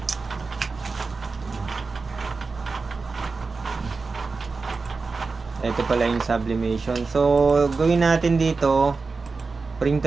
Ito pala yung sublimation. So, gawin natin dito,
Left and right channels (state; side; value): quieter; left; 4.2 dB